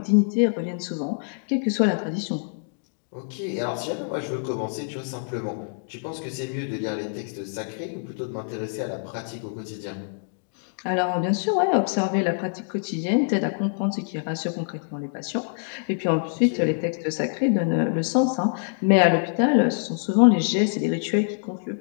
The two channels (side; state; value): right; silent; digital silence